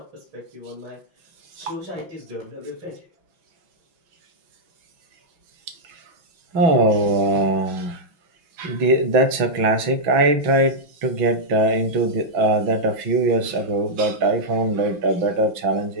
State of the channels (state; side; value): late; left; 6.0 ms